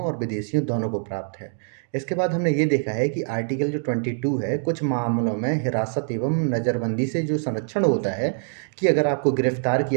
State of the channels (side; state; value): left; silent; digital silence